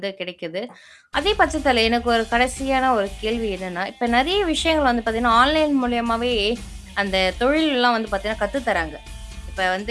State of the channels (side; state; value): both; identical; correlation 1.00